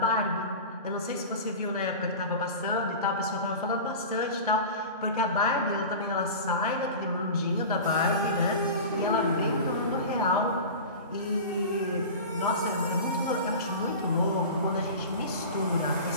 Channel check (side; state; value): both; inverted; correlation -0.32